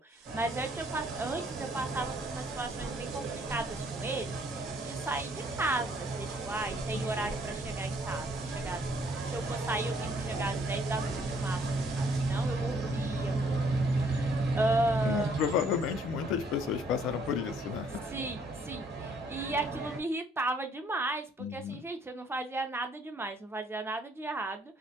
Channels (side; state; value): both; normal; correlation 0.64